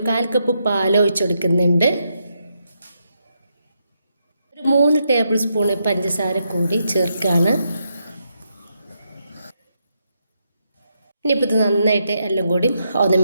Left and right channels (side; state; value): both; inverted; correlation -0.81